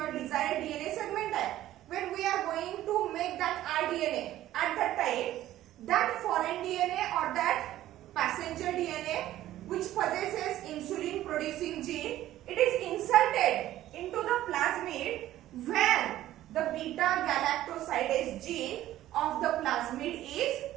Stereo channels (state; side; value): quieter; left; 13.9 dB